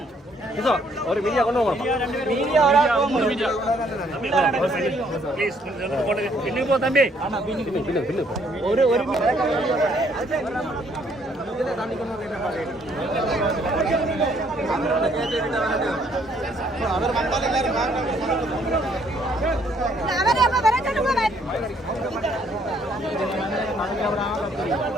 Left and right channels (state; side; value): normal; both; correlation 0.66